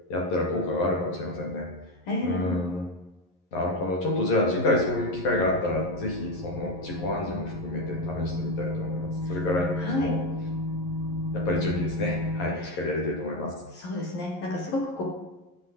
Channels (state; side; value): late; right; 11 ms